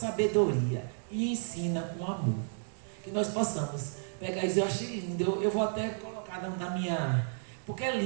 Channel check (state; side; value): silent; left; digital silence